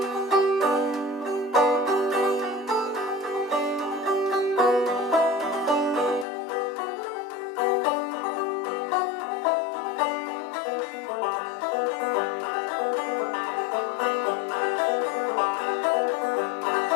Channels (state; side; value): drops out; right; at 6.2 s